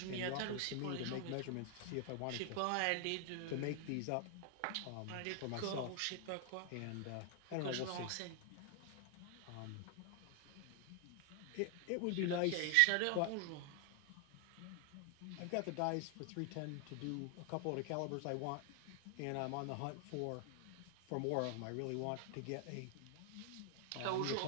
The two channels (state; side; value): different; both; correlation 0.00